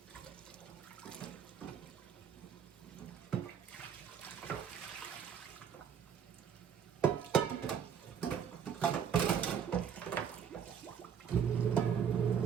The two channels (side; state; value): left; quieter; 7.8 dB